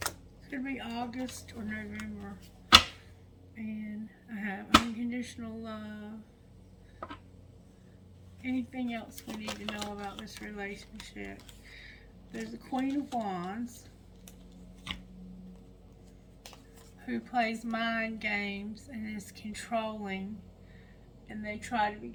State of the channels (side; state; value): both; identical; correlation 1.00